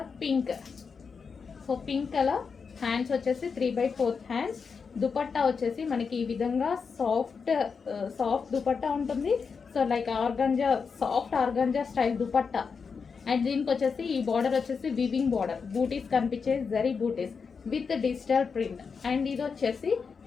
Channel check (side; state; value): right; quieter; 5.5 dB